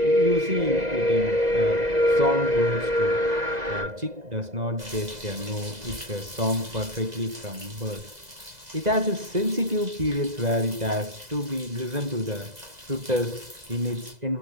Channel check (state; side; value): late; left; 2.0 ms